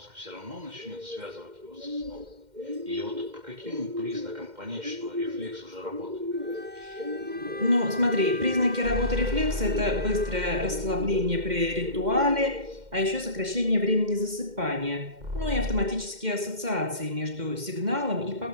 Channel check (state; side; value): late; left; 2.1 ms